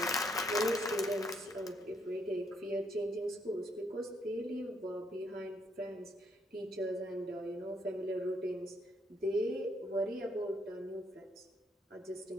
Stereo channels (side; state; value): both; normal; correlation 0.73